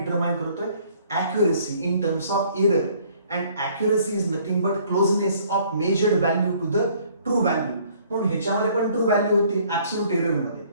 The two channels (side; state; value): both; inverted; correlation -0.59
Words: करतोय, accuracy in terms of error, and accuracy is nothing but closeness of measured value to the true value. म्हणून ह्याच्यामध्ये पण ट्रू व्हॅल्यू होती ऍब्सोल्यूट एरर मध्ये.